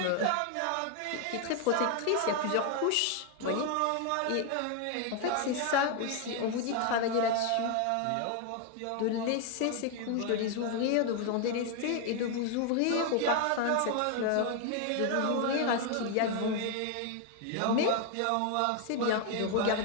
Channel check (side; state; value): both; different; correlation 0.01